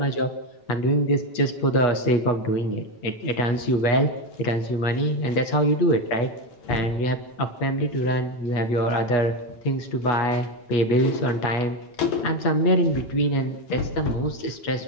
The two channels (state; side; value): late; right; 8.3 ms